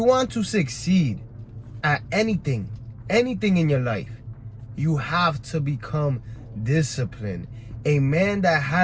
want to succeed at anything in your life, you have to become disciplined. A man that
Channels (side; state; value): both; identical; correlation 1.00